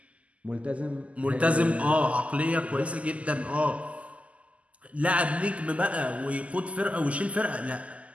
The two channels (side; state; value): left; late; 0.066 ms